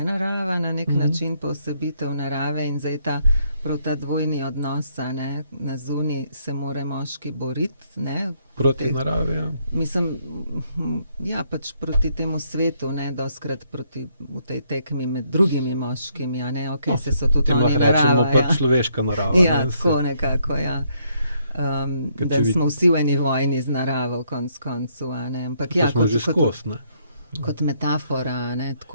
narava na nek način, posebitev narave in zdaj prav ta dvojni odnos, na zunaj se mora moški boriti, proti naravi, ja. Mislim, ja, pač proti temu svetu, dostikrat v tej tekmi med drugimi moškimi, se so tudi oni narava. Rečemo pač človeška narava. Ja, tako nekako, ja. Da smo vsi v eni vojni z naravo, konc koncu, ampak ja, smo že skozi, ne? kot metafora, ne,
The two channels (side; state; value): both; inverted; correlation -0.71